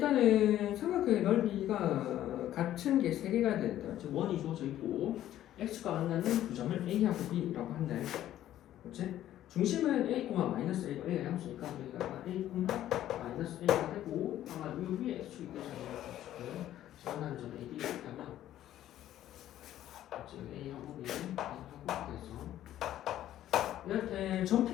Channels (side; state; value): right; quieter; 12.6 dB